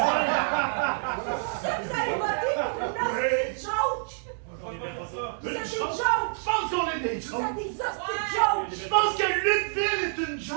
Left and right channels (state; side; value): silent; left; digital silence